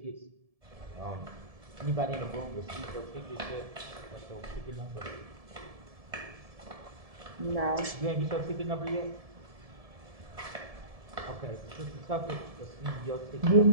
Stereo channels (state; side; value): late; left; 1.7 ms